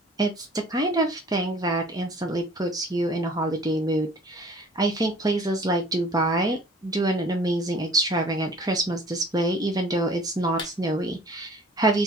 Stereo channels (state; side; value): normal; both; correlation 0.51